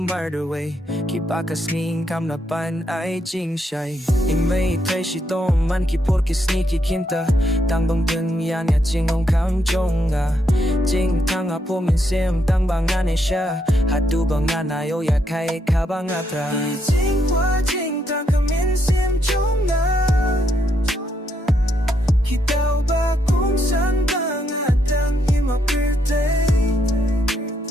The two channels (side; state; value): both; normal; correlation 0.77